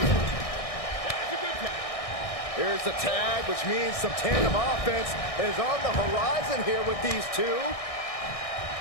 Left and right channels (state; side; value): late; right; 1.6 ms